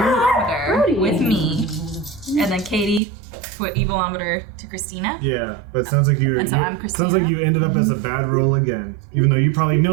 with me, and then Katie put evilometer to Christina? Yeah, but it sounds like you. And so you- I'm sounds like you ended up as a bad roll again. Even though you probably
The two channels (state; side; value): drops out; left; at 3.0 s